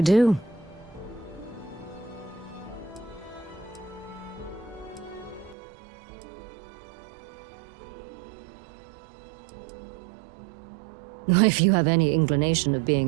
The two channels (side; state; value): left; drops out; at 5.6 s